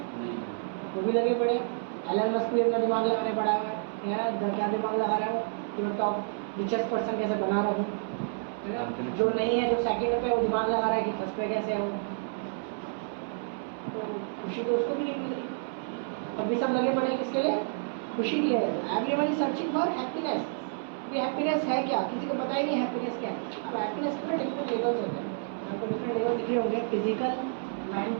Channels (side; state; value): left; silent; 58 dB below the other